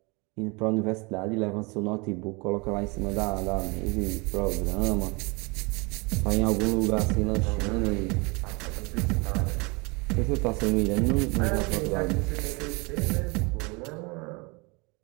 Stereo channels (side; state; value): left; quieter; 28.3 dB